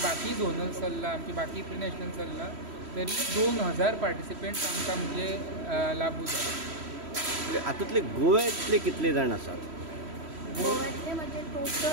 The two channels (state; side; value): late; left; 3.1 ms